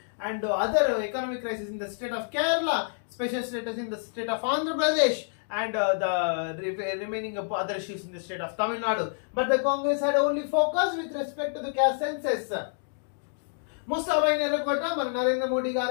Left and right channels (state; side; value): silent; right; digital silence